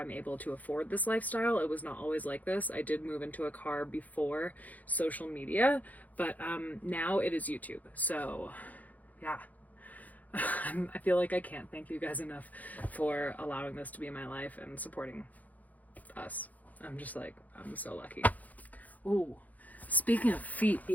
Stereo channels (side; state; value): right; late; 0.078 ms